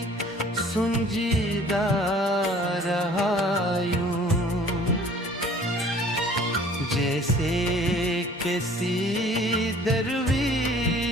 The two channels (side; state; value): both; normal; correlation 0.52